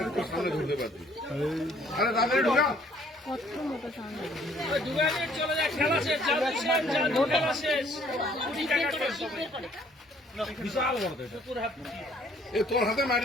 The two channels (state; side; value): normal; both; correlation 0.61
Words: তো সামনে ঢুকতে পারছি। আরে তাড়াতাড়ি ঢুকা। চলে যায়, খেলা শেষ, খেলা শেষ। বিশাল বড় এ তোর হাতে মারি